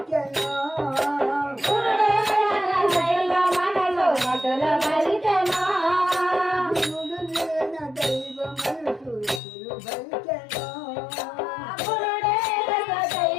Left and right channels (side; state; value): right; drops out; at 9.4 s